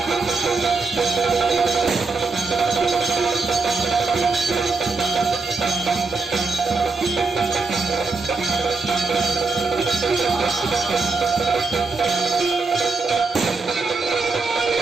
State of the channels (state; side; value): quieter; left; 4.1 dB